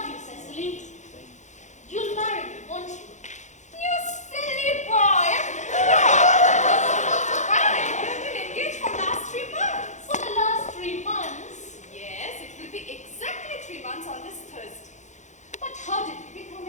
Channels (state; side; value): late; right; 0.35 ms